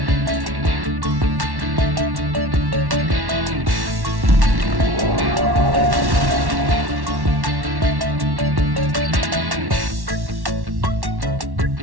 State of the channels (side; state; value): left; late; 1.1 ms